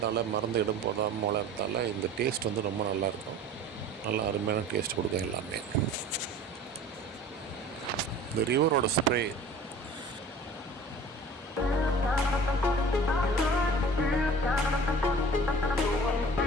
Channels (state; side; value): normal; both; correlation 0.43